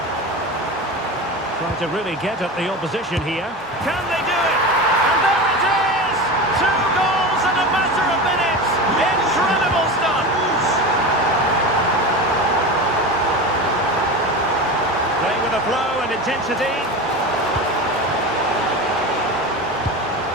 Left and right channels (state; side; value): normal; both; correlation 0.26